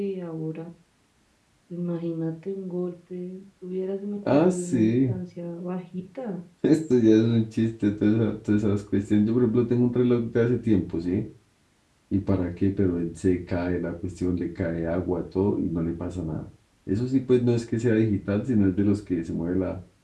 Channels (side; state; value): both; identical; correlation 1.00